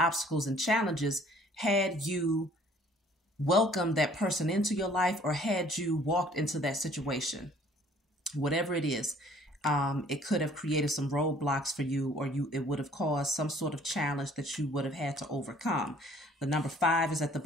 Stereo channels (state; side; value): normal; both; correlation 0.56